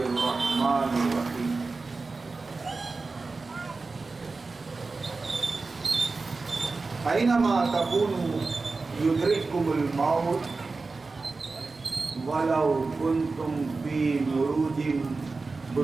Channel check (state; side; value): quieter; left; 3.9 dB